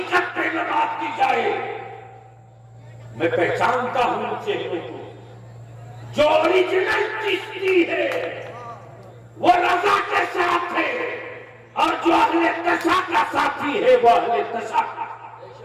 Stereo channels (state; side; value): identical; both; correlation 1.00